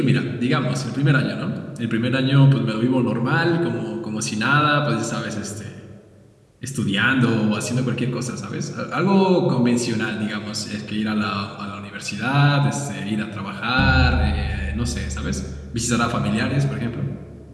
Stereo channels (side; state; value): both; identical; correlation 1.00